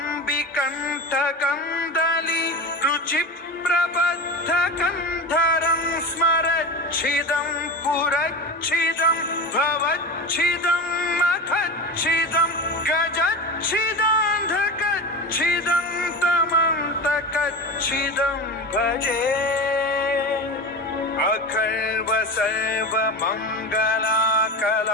कंठ कंदली रुचि प्रबद्ध कंधरं स्मरच्छिदं पुरच्छिदं भवच्छिदं मखच्छिदं गजच्छिदान्धकच्छिदं तमन्तकच्छिदं भजे अखर्व सर्व मंगला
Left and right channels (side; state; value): both; normal; correlation 0.26